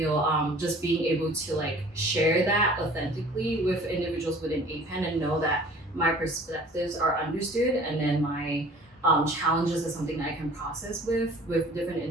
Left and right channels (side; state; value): both; normal; correlation 0.48